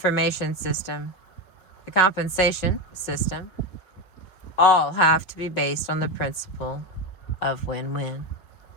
system, the compensation system, all have to be based on the principle of win-win.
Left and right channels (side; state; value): right; late; 5.4 ms